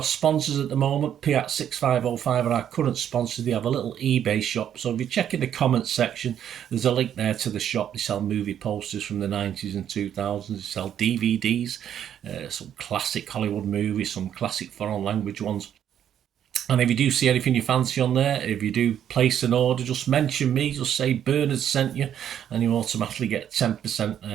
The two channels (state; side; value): quieter; left; 9.8 dB